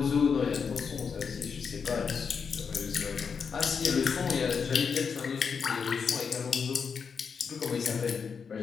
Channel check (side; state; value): right; quieter; 6.1 dB